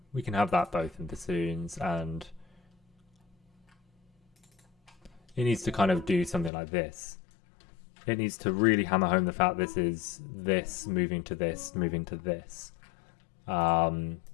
We can have that both in bassoons, and it needs to kind of do something like this. It needs to really hammer home the fact this is this moving to this, moving to this. But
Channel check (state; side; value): drops out; right; at 6.5 s